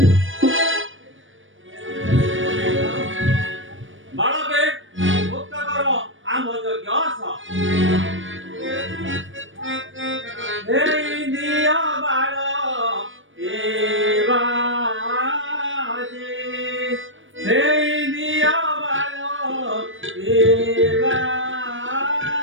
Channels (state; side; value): late; left; 0.57 ms